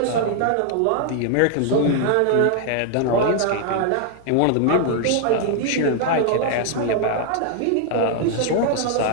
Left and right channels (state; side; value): different; both; correlation 0.00